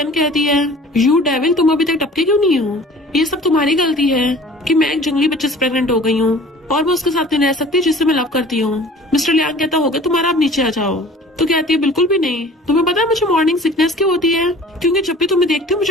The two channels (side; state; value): both; normal; correlation 0.46